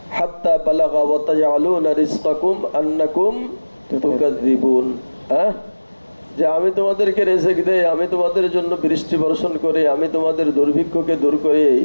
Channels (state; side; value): inverted; both; correlation -1.00